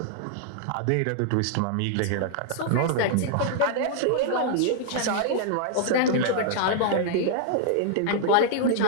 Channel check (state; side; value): different; both; correlation -0.01